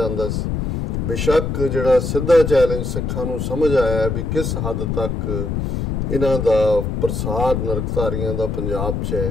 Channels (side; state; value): left; noise; rumble, 2 dB below the sound